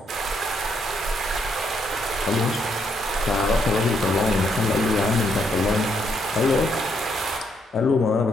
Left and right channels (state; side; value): normal; both; correlation 0.75